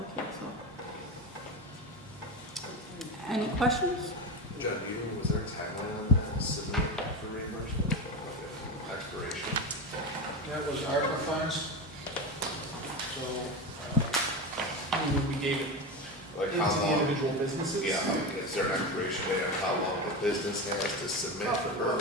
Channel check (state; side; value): normal; both; correlation 0.21